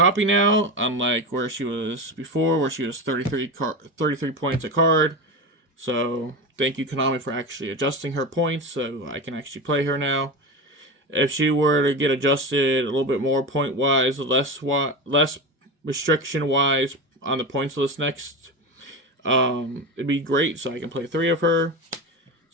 now, unlike where she was before, where she was 33 points a card. So thank you, Konami, for actually adjusting her points so I can actually play her now. If she were to get adjusted a little bit more point-wise, less restriction-wise on the points list next, it'd be great, so I can play 3 of her.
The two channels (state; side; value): normal; both; correlation 0.22